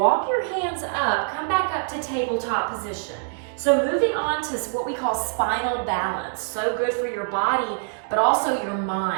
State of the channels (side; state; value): left; silent; digital silence